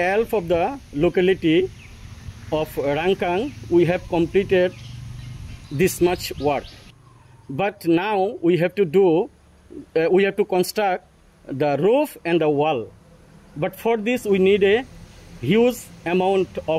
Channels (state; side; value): identical; both; correlation 1.00